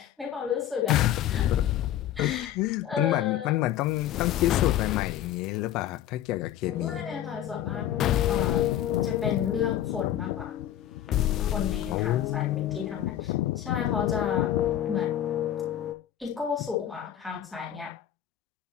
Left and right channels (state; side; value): quieter; right; 11.6 dB